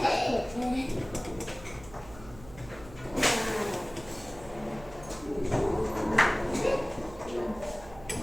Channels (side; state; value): right; noise; hum, 18 dB below the sound